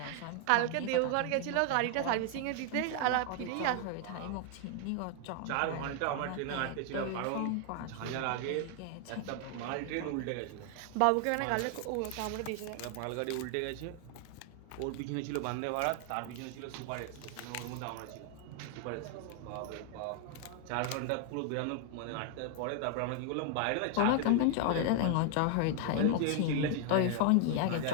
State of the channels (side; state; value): both; different; correlation 0.00